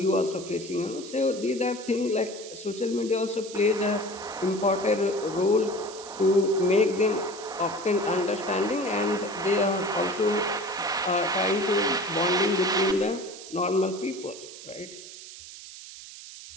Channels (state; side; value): noise; right; hiss, 14 dB below the sound